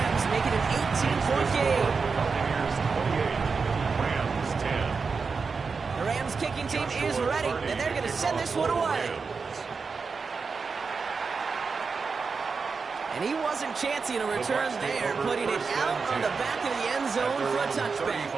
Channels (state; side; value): quieter; left; 4.9 dB